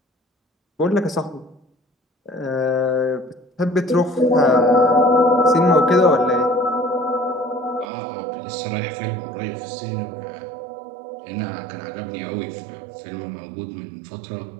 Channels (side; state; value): left; drops out; at 7.9 s